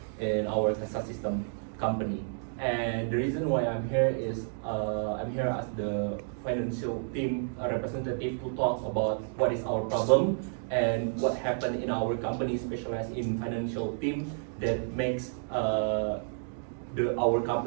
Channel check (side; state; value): left; silent; digital silence